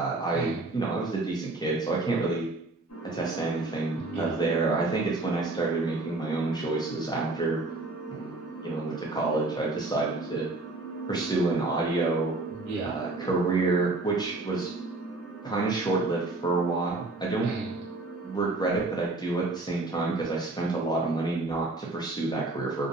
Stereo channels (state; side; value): quieter; left; 3.0 dB